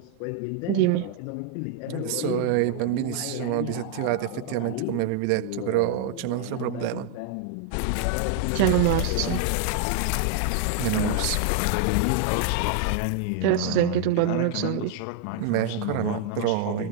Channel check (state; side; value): different; both; correlation 0.00